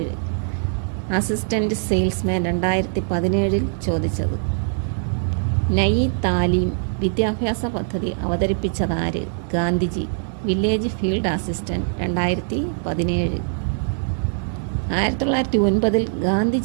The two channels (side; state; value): left; silent; 60 dB below the other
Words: അസിസ്റ്റൻ്റ് സെയിൽസ്മാൻ 2017 ചോദിച്ചത്. നയി താലീം വിദ്യാഭ്യാസ പദ്ധതി അവതരിപ്പിച്ചതാര്? Gandhiji. Village field assistant 2017. 1909